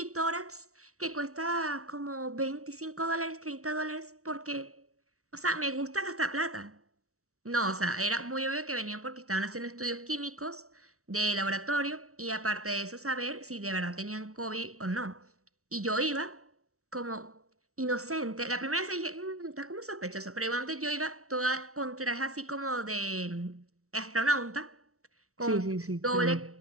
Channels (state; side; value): late; left; 0.64 ms